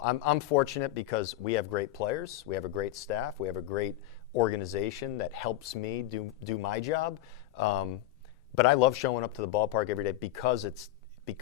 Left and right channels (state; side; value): quieter; right; 14.6 dB